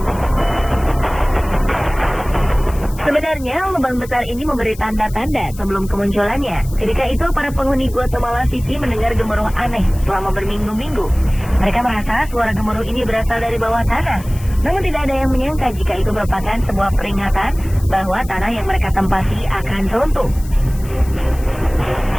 Sebenarnya, lubang besar ini memberi tanda-tanda sebelum kemunculannya. Ketika itu, para penghuni Guatemala City mendengar gemuruh aneh selama berminggu-minggu. Mereka merasa suara gemuruh ini berasal dari bawah tanah. Namun tidak ada yang menyangka jika itu merupakan sebuah peringatan bahwa tanah yang mereka tempati akan runtuh.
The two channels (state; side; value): noise; left; hiss, 19 dB below the sound